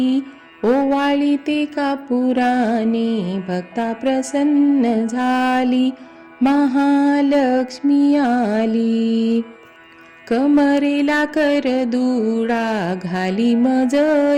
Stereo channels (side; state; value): both; identical; correlation 1.00